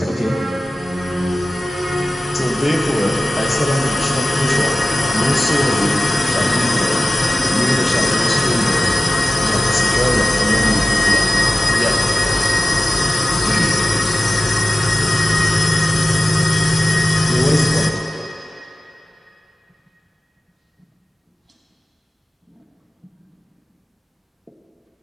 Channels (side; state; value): both; normal; correlation 0.95